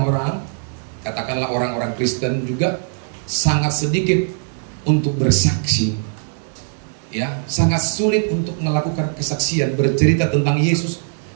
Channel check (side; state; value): left; silent; digital silence